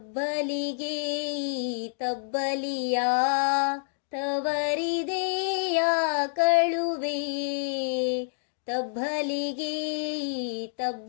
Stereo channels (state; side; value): silent; right; digital silence